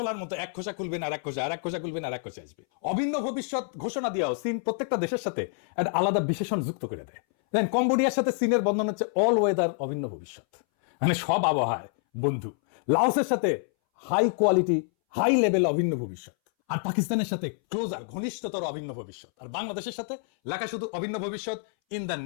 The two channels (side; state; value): right; silent; 60 dB below the other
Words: মতো, এক খোসা খুলবেন আর এক খোসা, আর এক খোসা খুলবেন আর এক খোসা আসবে। অভিন্ন ভবিষ্যৎ ঘোষণা দিয়েও চীন প্রত্যেকটা দেশের সাথে একটা আলাদা বিশেষণ যুক্ত করে দেয়। দেন কম্বোডিয়ার সাথে চীনের বন্ধন হচ্ছে অল ওয়েদার অভিন্ন ভবিষ্যৎ, মানে সব আবহাওয়ায় বন্ধু। লাওসের সাথে হাই কোয়ালিটি, হাই লেভেল অভিন্ন ভবিষ্যৎ। আর পাকিস্তানের সাথে ক্লোজার, ঘনিষ্ঠতর অভিন্ন ভবিষ্যৎ। আর বাংলাদেশের সাথে লেখা শুধু অভিন্ন ভবিষ্যৎ ইন দ্য